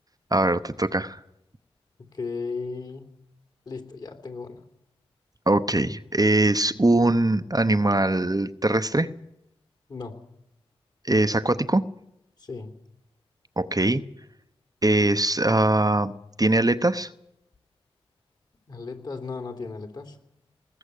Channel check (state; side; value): normal; both; correlation 0.71